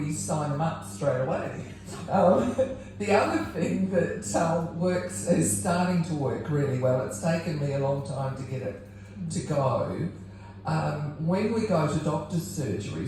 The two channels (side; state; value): both; identical; correlation 1.00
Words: sign them up straight away. The other thing that is starting to work really well, it's taken me a long time to get it to go. When we go to doctor's